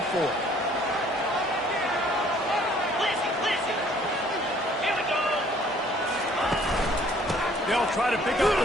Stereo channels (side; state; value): both; normal; correlation 0.58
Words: fourth. They'll try to pick up